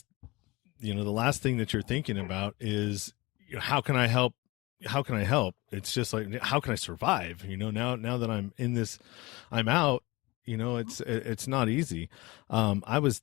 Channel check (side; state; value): right; quieter; 22.6 dB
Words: thing that you're thinking about is, how can I help? How can I help? It's just like, how can I survive? Now that I'm in this, I'm out. It's not easy. I was